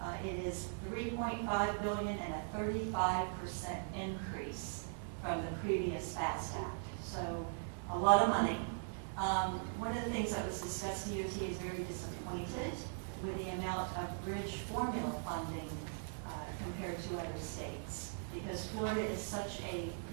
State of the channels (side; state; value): left; silent; digital silence